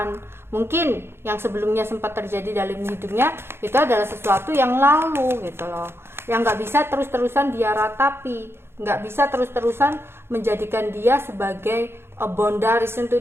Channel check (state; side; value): late; left; 0.12 ms